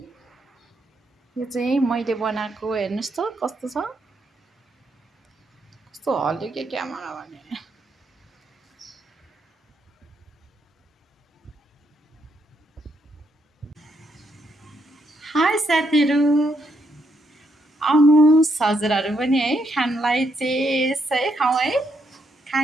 यो चाहिँ मैले बनाएको हेर्नुहोस् त कस्तो छ कस्तो हल्यो के क्यामेरा भने हाई साथीहरू आउनुहोस् हजुरहरू पनि है खानलाई चेस है खाउँ है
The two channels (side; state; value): both; normal; correlation 0.77